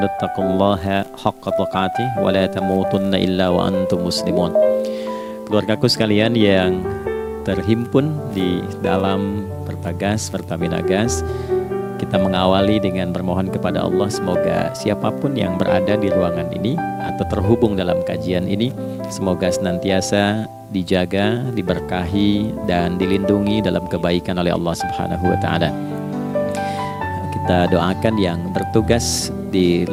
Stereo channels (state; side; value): identical; both; correlation 1.00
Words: taqullaha haqqa tuqatih wa la tamutunna illa wa antum muslimun. Keluargaku sekalian yang terhimpun di dalam Pertagas, Pertamina Gas, kita mengawali dengan bermohon kepada Allah semoga siapapun yang berada di ruangan ini atau terhubung dalam kajian ini, semoga senantiasa dijaga, diberkahi dan dilindungi dalam kebaikan oleh Allah Subhanahu wa taala. Kita doakan yang bertugas di